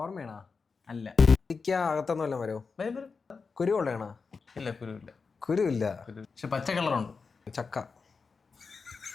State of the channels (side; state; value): right; quieter; 4.9 dB